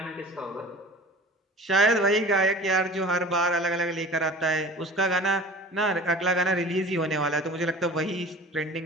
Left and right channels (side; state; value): both; normal; correlation 0.41